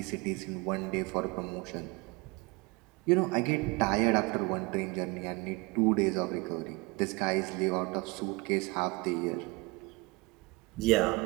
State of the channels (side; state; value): left; quieter; 25.7 dB